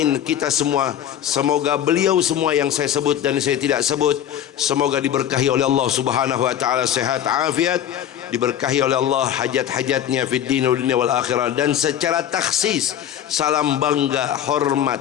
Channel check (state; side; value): quieter; right; 10.5 dB